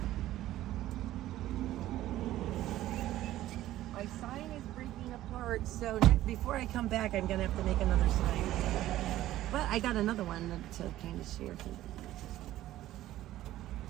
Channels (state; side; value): quieter; left; 14.4 dB